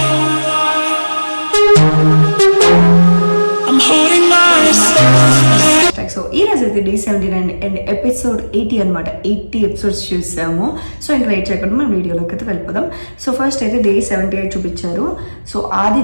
సో ఈ రోజు అయితే డే 79 అండ్ ఎపిసోడ్ 80 అనమాట. 80 ఎపిసోడ్స్ చూసాము. సో ఇంకా లేట్ చేయకుండా మనం వీడియోలోకి అయితే వెళ్ళిపోదాం. సో ఫస్ట్ అయితే డే 78 చూపించారు. సో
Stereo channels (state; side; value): inverted; both; correlation -1.00